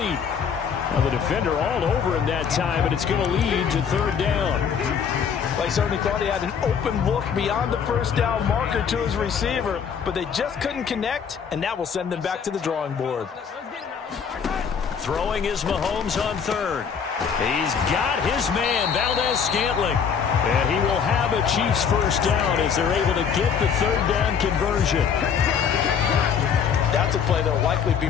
Well, the defender all over him that time, but it's going to lead to 3rd down. Well, he certainly thought he had an open look beyond the first down marker to his receiver, but they just couldn't connect, and that will send them back to the drawing board. Throwing is Mahomes on 3rd. He's got his man, Valdez-Scantling. And he will have a Chiefs first down as they're able to get the 3rd down conversion. That's a play that will likely be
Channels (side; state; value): right; quieter; 7.0 dB